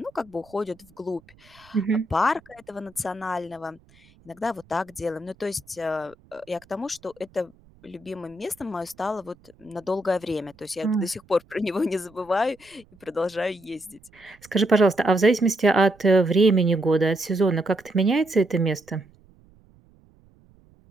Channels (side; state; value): right; noise; rumble, 28 dB below the sound